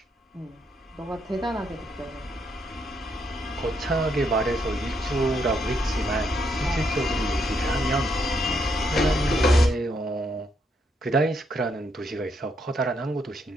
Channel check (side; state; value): both; normal; correlation 0.76